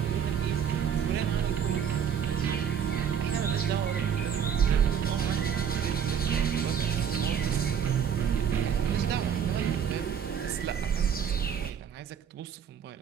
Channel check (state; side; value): quieter; left; 8.0 dB